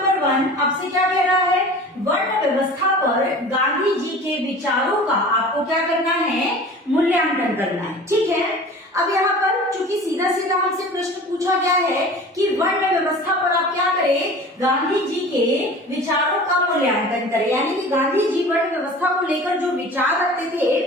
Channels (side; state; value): both; normal; correlation 0.40